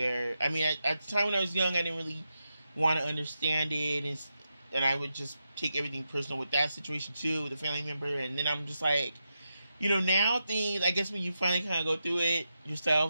I mean, at the time when I was young, I didn't really want to understand it, and I would just take everything personal with that situation too, with a family member. And then I'm just like, you know, now things, I guess when you finally kind of go through it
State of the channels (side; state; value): both; inverted; correlation -0.87